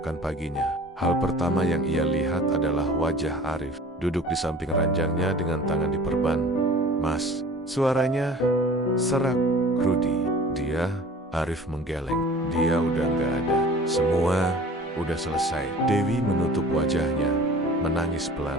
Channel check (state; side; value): normal; both; correlation 0.44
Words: paginya, hal pertama yang ia lihat adalah wajah Arif, duduk di samping ranjangnya dengan tangan diperban. Mas, suaranya serak. Rudi, dia, Arif menggeleng. Dia udah nggak ada. Semua udah selesai. Dewi menutup wajahnya, menangis